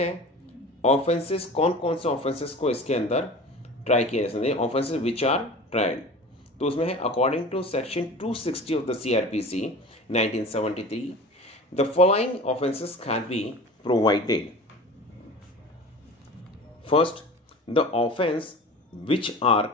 offences, कौन कौन से offences को इसके अंदर ट्राई किया जा सकता है, ऑफेंसेस विच आर ट्राइड। तो उसमें है according to section 260 of the CRPC 1973 the following offenses can be provided. First, the offense which are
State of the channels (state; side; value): normal; both; correlation 0.38